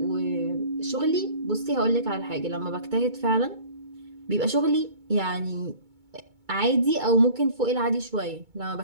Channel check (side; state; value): left; late; 2.2 ms